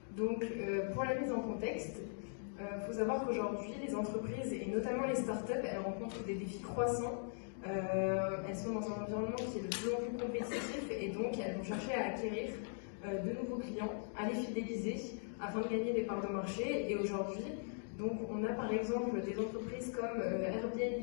Donc, pour la mise en contexte, faut savoir qu'aujourd'hui, les entreprises, et notamment les startups, elles rencontrent des défis croissants. Elles sont dans un environnement qui est de plus en plus compétitif et donc elles vont chercher à acquérir de nouveaux clients, à les fidéliser afin de gagner des parts de marché. Et aujourd'hui, donc, on a par exemple des entreprises comme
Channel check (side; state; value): right; silent; digital silence